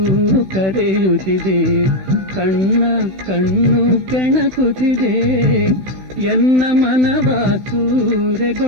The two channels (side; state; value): left; late; 16 ms